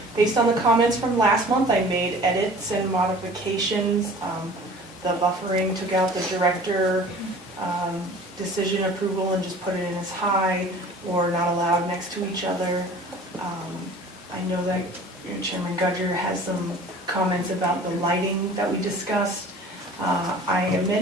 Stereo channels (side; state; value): both; normal; correlation 0.45